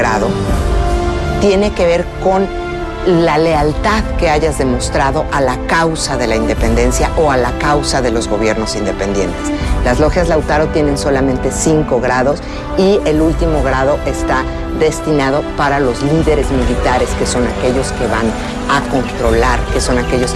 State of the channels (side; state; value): both; identical; correlation 1.00